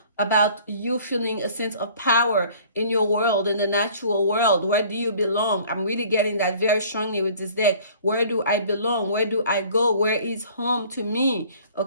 you feeling a sense of power in your world, in the natural world. Where do you belong? I'm really getting that very strongly with this deck. Where do I belong? Where do I go? Where is home to me?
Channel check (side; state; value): both; inverted; correlation -0.51